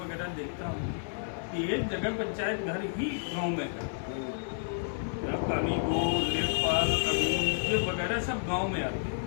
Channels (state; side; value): silent; right; 55 dB below the other